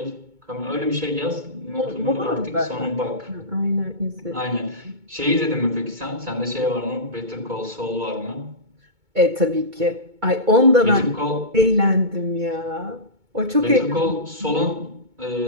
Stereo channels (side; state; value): left; late; 2.2 ms